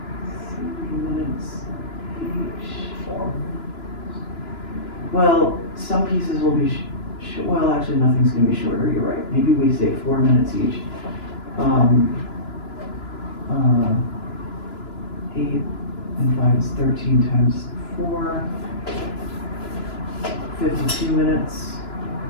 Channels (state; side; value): late; right; 2.9 ms